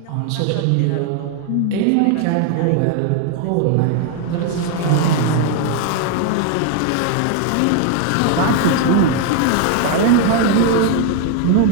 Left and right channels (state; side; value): different; both; correlation 0.01